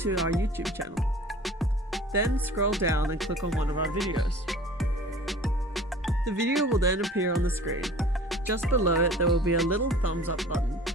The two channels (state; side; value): normal; both; correlation 0.45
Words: our YouTube channel. Then scroll down and click on one of our videos. The video will then appear on the screen. Just below it there will be a little thumbs up button.